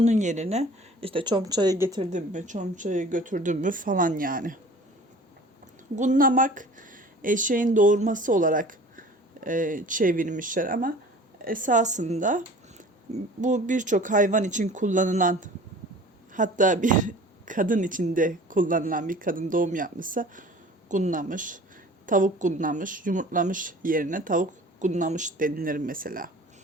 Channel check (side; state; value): both; normal; correlation 0.45